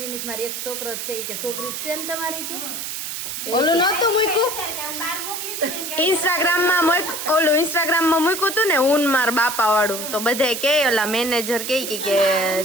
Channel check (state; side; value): noise; right; hiss, 5 dB below the sound